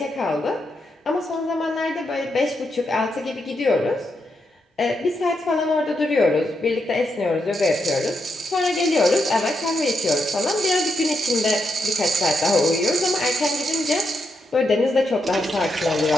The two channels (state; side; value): normal; both; correlation 0.82